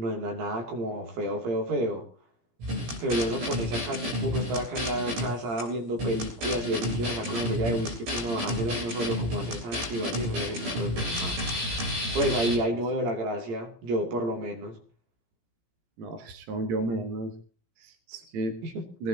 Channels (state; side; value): late; left; 17 ms